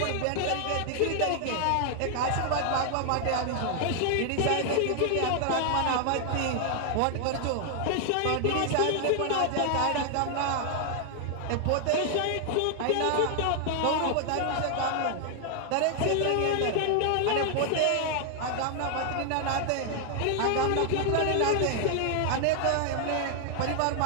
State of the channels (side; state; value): both; different; correlation 0.00